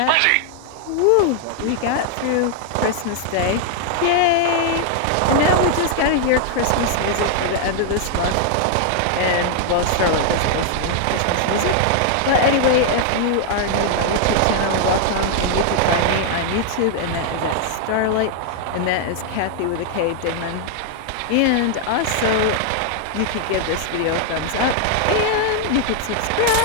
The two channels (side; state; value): both; different; correlation 0.00